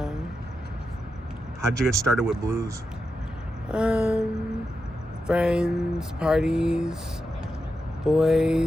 How'd you get started with blues? Friends, parties,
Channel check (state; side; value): normal; both; correlation 0.88